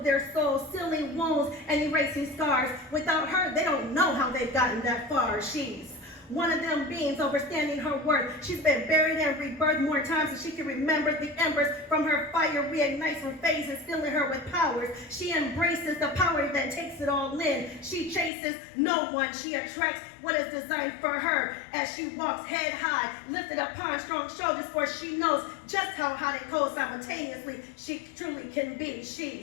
their souls, sealing wounds and erasing scars. Without her, they don't know how they've gotten that far. She's one of them beings overstanding her worth. She's been buried and rebirthed more times than she can remember. The embers from her fire reignites from phases, filling her with powers. She embraces the power that takes it all in. She chases no one. She attracts what is designed for her as she walks head high, lifted upon strong shoulders, for she knows just how hot and cold simultaneously she truly can be.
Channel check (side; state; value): right; drops out; at 18.3 s